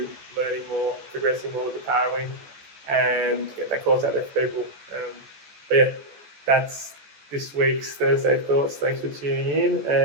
learning more, progressing more with the Parawing, and get that course out there for people. That's this week's Thursday Thoughts. Thanks for tuning in,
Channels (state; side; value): late; left; 14 ms